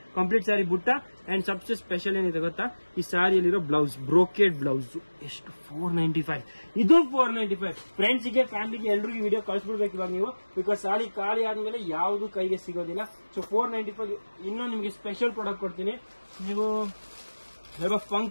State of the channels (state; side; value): inverted; both; correlation -1.00